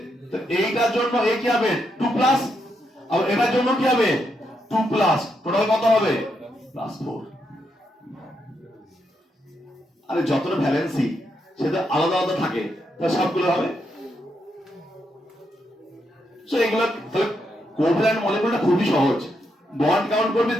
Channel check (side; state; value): both; normal; correlation 0.81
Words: তো এইটার জন্য এ কি হবে 2+, আর এটার জন্য কি হবে 2+, টোটাল কত হবে +4। আরে যতটা ভ্যালেন্সি সেটা আলাদা আলাদা থাকে, তাহলে সবগুলো হবে। সো এগুলো তাহলে কোভ্যালেন্ট মলিকিউলটা খুবই সহজ, বন্ড কাউন্ট করবি,